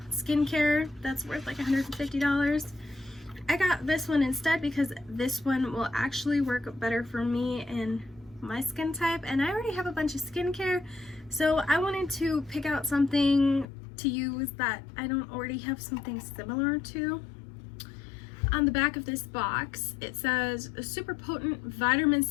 skincare that's worth like $150. I got this one instead because this one will actually work better for me and my skin type, and I already have a bunch of skincare, so I wanted to pick out something to use that I don't already have something similar to. On the back of this box, it says a super potent vitamin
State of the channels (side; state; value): right; drops out; at 13.7 s